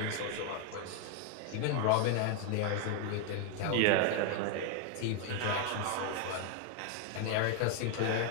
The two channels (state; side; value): different; both; correlation 0.01